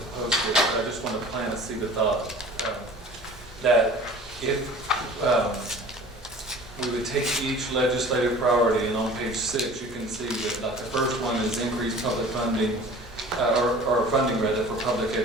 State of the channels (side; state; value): both; normal; correlation 0.44